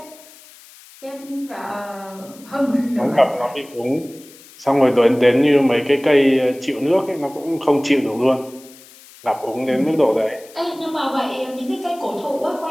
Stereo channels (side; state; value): left; noise; hiss, 22 dB below the sound